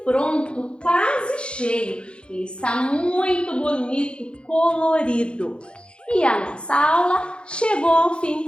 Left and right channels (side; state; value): right; late; 0.055 ms